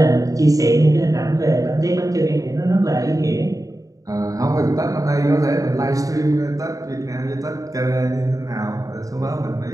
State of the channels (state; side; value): late; left; 0.17 ms